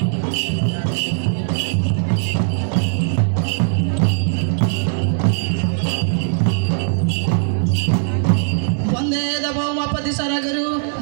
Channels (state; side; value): silent; left; digital silence